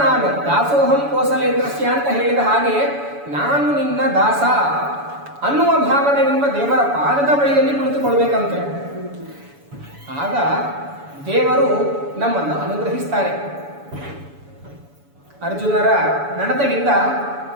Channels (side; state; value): left; late; 7.0 ms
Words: ನಾನು ದಾಸೋಹಂ ಕೋಸಲೇಂದ್ರಸ್ಯ ಅಂತ ಹೇಳಿದ ಹಾಗೆ ನಾನು ನಿನ್ನ ದಾಸ ಅನ್ನುವ ಭಾವನೆಯಿಂದ ದೇವರ ಪಾದದ ಬಳಿಯಲ್ಲಿ ಕುಳಿತುಕೊಳ್ಬೇಕಂತೆ. ಆಗ ದೇವರು ನಮ್ಮನ್ನು ಅನುಗ್ರಹಿಸ್ತಾರೆ. ಅರ್ಜುನರ ನಡತೆಗಿಂತ